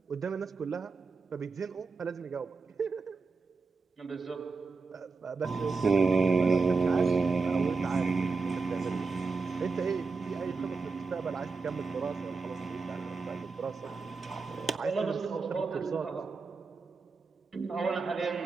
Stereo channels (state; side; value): quieter; left; 4.4 dB